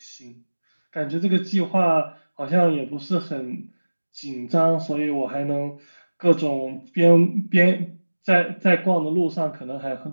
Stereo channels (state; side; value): inverted; both; correlation -1.00